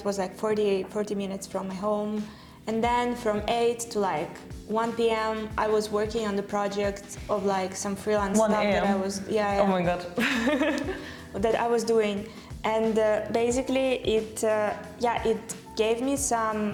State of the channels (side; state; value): both; identical; correlation 1.00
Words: was 40 minutes from my home, and then from 8 to 1 p.m. I was working on the project of like some freelance 1 stuff that I a.m.? was Oh my god. that I was doing, and basically it gave me some